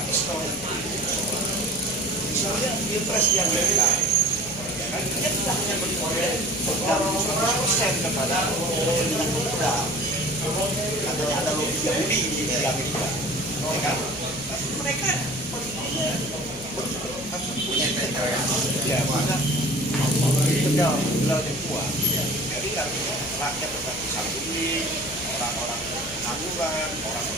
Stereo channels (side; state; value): left; noise; hum, 15 dB below the sound